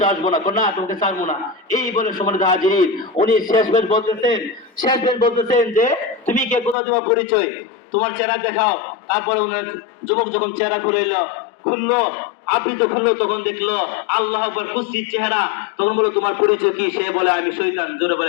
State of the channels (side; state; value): right; drops out; at 6.8 s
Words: আসবো না, কোনা তোমাকে ছাড়বো না। এই বলে সম্মানিত হাজিরিন, উনি শেষ বেশ বলতেছেন যে তুমি কে, কোথা তোমার পরিচয়, তোমার চেহারা দেখাও। তারপরে উনার যুবক যখন চেহারা খুললো, আবৃত খুললো, তখন দেখলো আল্লাহ আকবার কুৎসিত চেহারা। তখন বললো, তোমার পরিচয় কি? সে বলে, আমি শয়তান। জোরে